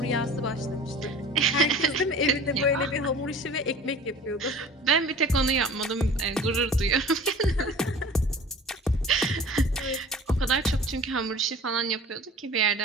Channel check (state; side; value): normal; both; correlation 0.43